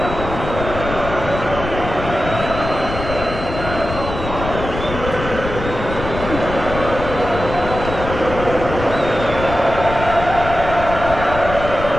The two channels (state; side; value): noise; left; rumble, 7 dB below the sound